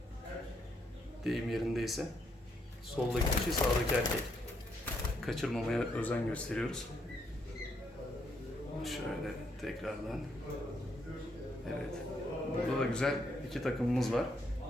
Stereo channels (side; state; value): both; normal; correlation 0.75